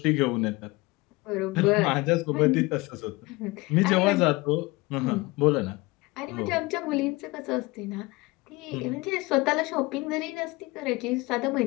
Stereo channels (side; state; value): right; quieter; 23.0 dB